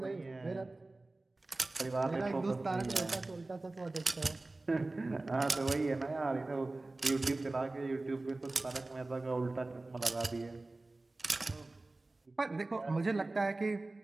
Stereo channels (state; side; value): quieter; left; 3.0 dB